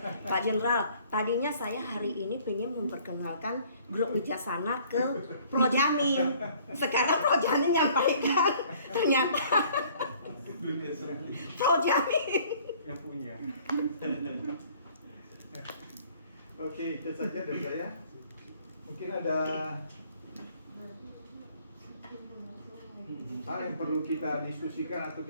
Pak Jenderal, tadinya saya hari ini pengen memperkenalkan grup Wijaksana ke Projamin. Sekarang Projamin nyampaikan ternyata Projamin yang punya. Oke, itu saja dari saya. Mungkin ada hal yang perlu kita diskusikan atau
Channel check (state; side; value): inverted; both; correlation -0.57